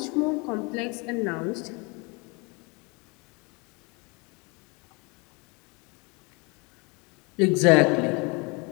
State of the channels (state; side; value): quieter; right; 29.2 dB